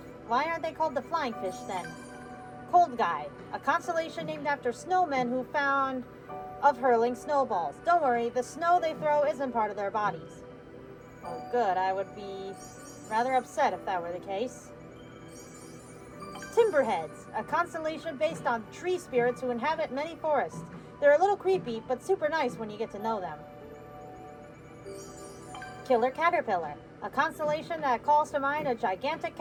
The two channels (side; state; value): both; identical; correlation 1.00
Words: they called the flying fish then? Cold Guy, a constellation named after snowmen who found of hurling snowballs. Don't worry, the snow they throw isn't part of their bodies. Oh good, I would be rather upset if that were the case. Timberheads, a constellation based on tree spirits who inhabit many forests. They're a little creepy, but super nice when you get to know them. Killer Caterpillar, a constellation that calls to mind a gigantic